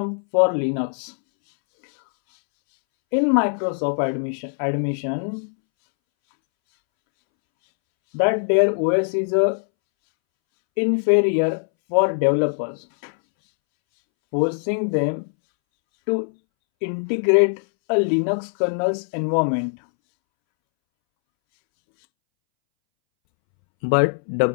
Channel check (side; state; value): right; silent; 65 dB below the other